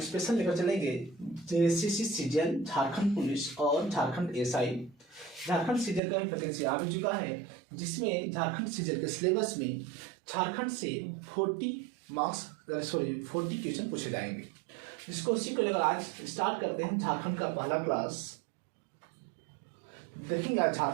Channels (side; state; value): left; drops out; at 6.0 s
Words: स्पेशल लेकर चलेंगे जेसीसी सीजीएल, झारखंड पुलिस और झारखंड एसआई। झारखंड सीजीएल का भी वैकेंसी आ भी चुका है, जिसमें झारखंड सीजीएल के सिलेबस में झारखंड से 40 क्वेश्चन पूछे जाएंगे, जिसको उसी को लेकर आज स्टार्ट करते हैं। झारखंड का पहला क्लास देखेंगे। आज